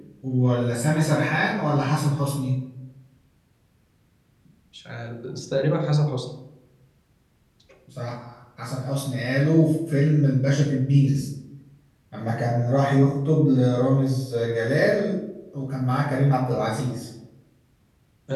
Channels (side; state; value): both; identical; correlation 1.00